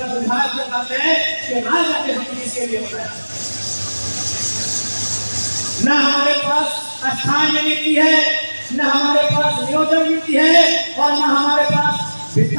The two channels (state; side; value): inverted; both; correlation -1.00